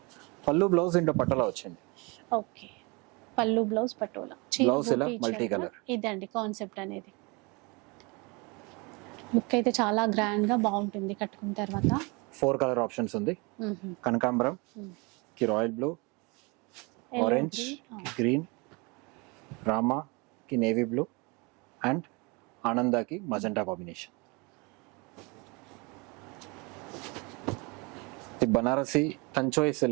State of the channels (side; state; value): left; quieter; 28.3 dB